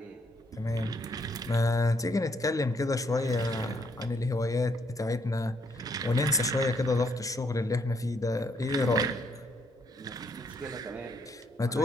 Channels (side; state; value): both; normal; correlation 0.71